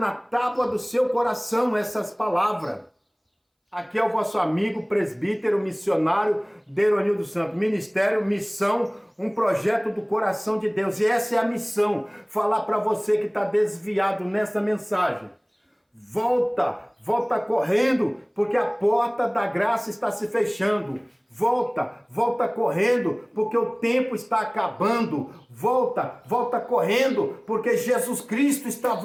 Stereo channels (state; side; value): identical; both; correlation 1.00